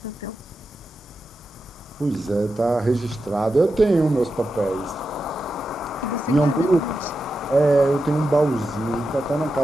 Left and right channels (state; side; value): normal; both; correlation 0.89